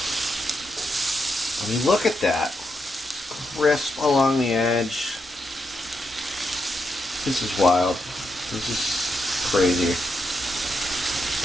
I mean, look at that. Crisp along the edge. This is wild. This is crazy.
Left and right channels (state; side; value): normal; both; correlation 0.83